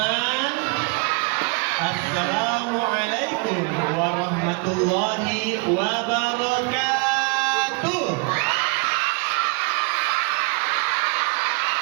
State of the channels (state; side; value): quieter; left; 31.2 dB